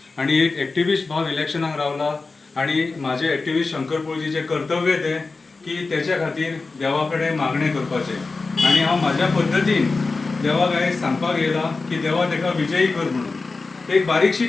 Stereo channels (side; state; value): right; quieter; 3.9 dB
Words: आणि एक एक्टिविस्ट भाव इलेक्शनाक रावला आणि माझे एक्टिविस्ट शंकर पळजीचे कर्तव्य ते की त्याच्या खातीर देवा कडेन मागणे करपाचे आणि हांव म्हाज्या पद्दतीन देवाक आयज सांगपाक येयला की देवा ताका विजयी कर म्हणून एक बारीकशी